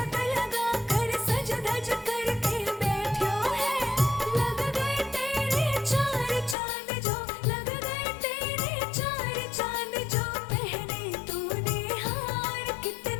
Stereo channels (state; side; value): drops out; right; at 6.6 s